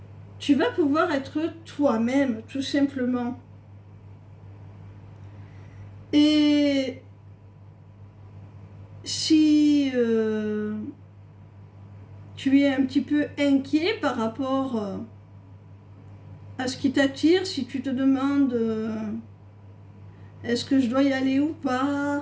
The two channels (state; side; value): identical; both; correlation 1.00